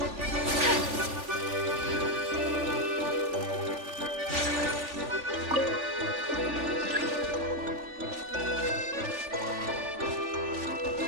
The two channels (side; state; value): left; late; 3.4 ms